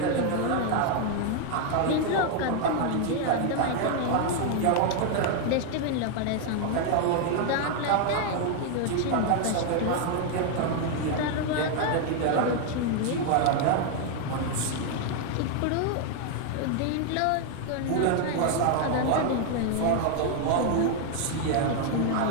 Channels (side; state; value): both; different; correlation 0.00